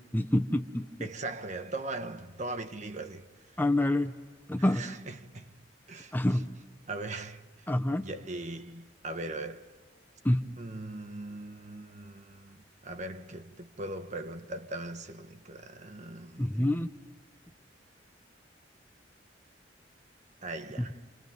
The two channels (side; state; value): both; normal; correlation 0.83